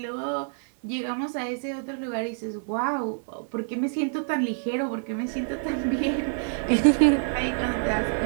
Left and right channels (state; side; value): silent; left; 57 dB below the other